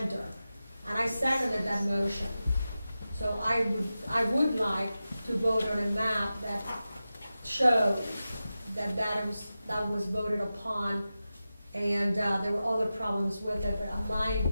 And I seconded that motion. So I would like to vote on a map that shows that was voted upon, and there were other problems with it, but my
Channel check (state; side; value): inverted; both; correlation -0.93